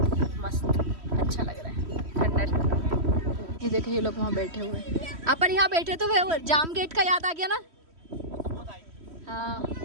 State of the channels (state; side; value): late; left; 3.1 ms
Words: मस्त अच्छा लग रहा है, ठंडा ठंडा। ये देखो ये लोग वहाँ बैठे हुए हैं। अपन यहाँ बैठे तो वो जाम गेट का याद आ गया ना। हाँ